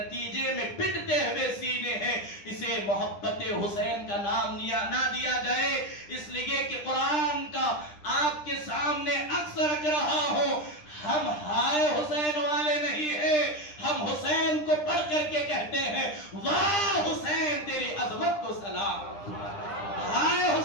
میں پٹتے ہوئے سینے ہیں. اسے محبت حسین کا نام نہ دیا جائے, اس لیے کہ قرآن کا آپ کے سامنے اکثر رکھ رہا ہوں, ہم ہائے حسین والے نہیں ہیں, ہم حسین کو پڑھ کر کے کہتے ہیں واہ حسین تیری عظمت کو سلام. ہائے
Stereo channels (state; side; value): late; right; 9.9 ms